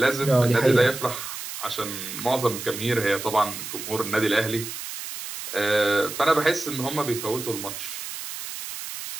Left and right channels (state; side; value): noise; right; hiss, 8 dB below the sound